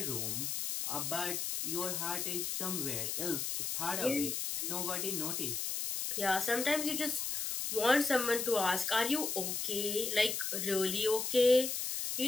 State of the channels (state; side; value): noise; left; hiss, 2 dB below the sound